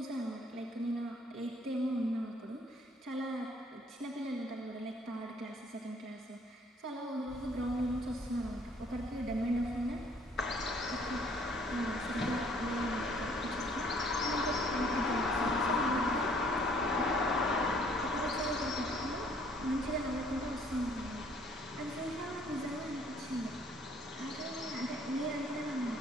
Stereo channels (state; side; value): normal; both; correlation 0.61